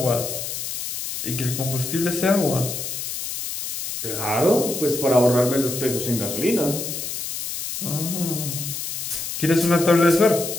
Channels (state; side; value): noise; left; hiss, 5 dB below the sound